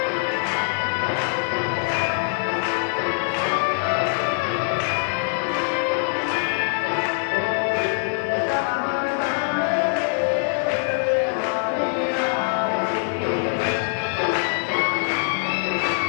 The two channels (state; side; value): silent; right; 63 dB below the other